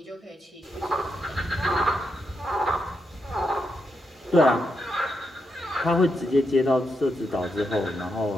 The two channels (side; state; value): both; normal; correlation 0.83